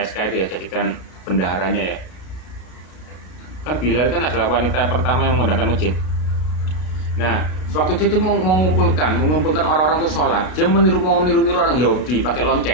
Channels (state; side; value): late; right; 32 ms